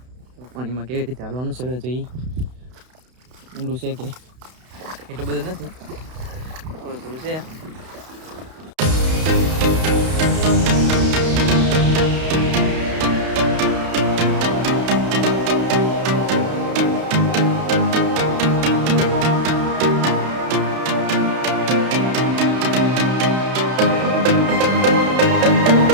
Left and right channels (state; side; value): late; left; 32 ms